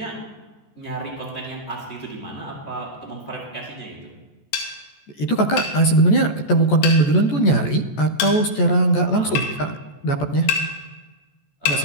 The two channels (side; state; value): right; late; 14 ms